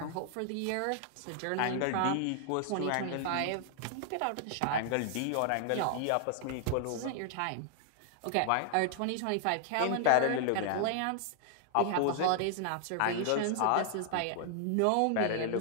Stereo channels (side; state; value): both; different; correlation 0.00